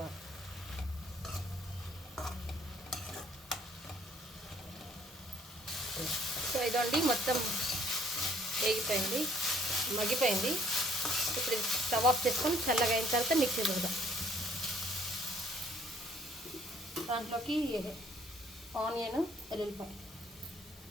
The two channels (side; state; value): both; normal; correlation 0.62